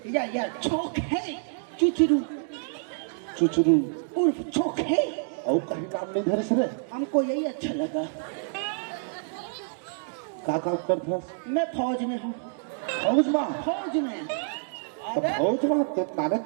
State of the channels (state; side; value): silent; left; digital silence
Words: या चौक है चुचरू चुचरू उर्फ चौक है। और कहीं नाम नहीं धरे सर हमको यही अच्छा लगा। का काम करता मैं फौज में हूँ। फौज में फौज में तो फौज में तो नाने